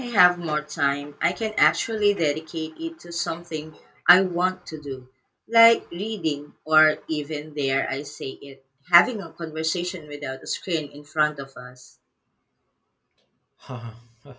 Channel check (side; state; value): both; identical; correlation 1.00